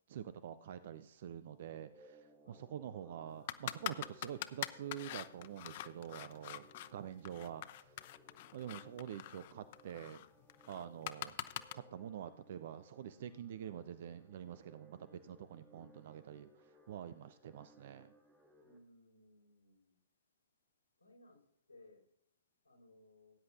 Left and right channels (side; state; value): both; inverted; correlation -0.40